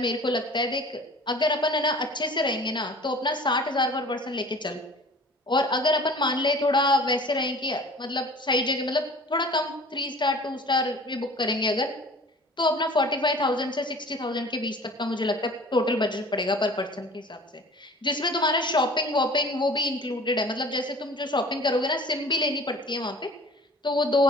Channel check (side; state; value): both; normal; correlation 0.45